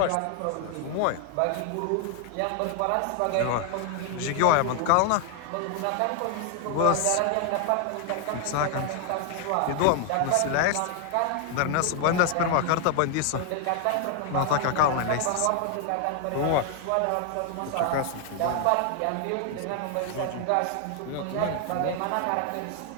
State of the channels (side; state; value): both; different; correlation 0.00